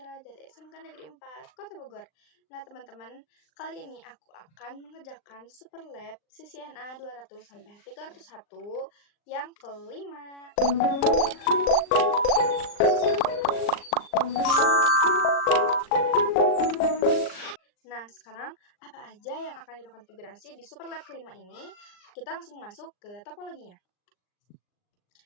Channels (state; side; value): late; right; 39 ms